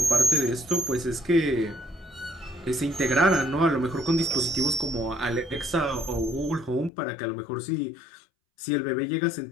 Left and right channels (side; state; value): right; drops out; at 6.9 s